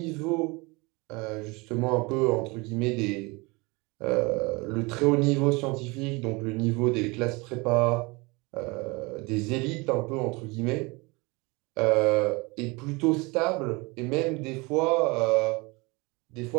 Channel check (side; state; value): left; quieter; 26.0 dB